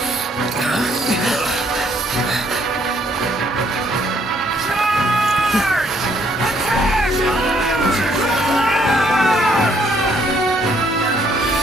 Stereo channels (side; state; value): both; normal; correlation 0.67